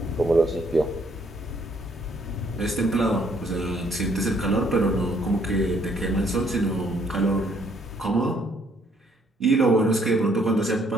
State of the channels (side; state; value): both; normal; correlation 0.67